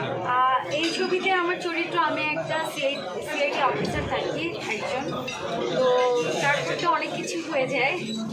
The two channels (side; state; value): both; identical; correlation 1.00